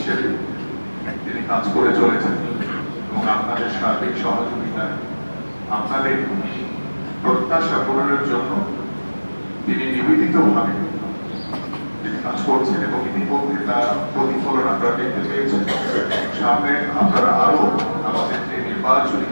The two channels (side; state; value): both; inverted; correlation -1.00